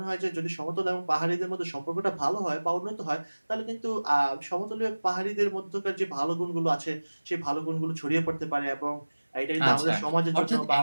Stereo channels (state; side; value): inverted; both; correlation -1.00